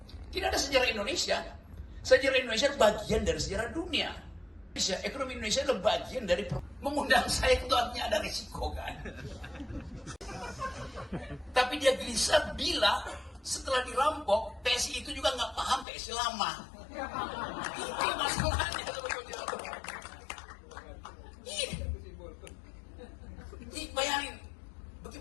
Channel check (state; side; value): drops out; right; at 15.9 s